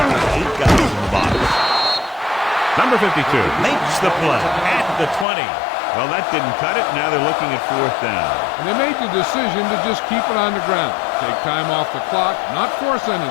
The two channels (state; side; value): drops out; right; at 5.2 s